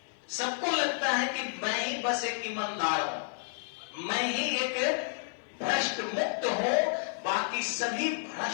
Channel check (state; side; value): silent; right; digital silence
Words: सबको लगता है कि मैं ही बस एक ईमानदार हूं, मैं ही एक भ्रष्ट मुक्त हो, बाकी सभी